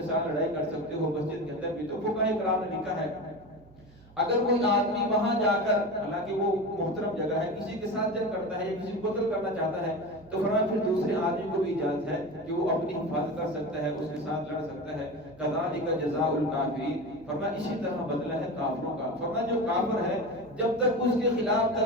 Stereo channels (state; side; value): noise; right; hum, 24 dB below the sound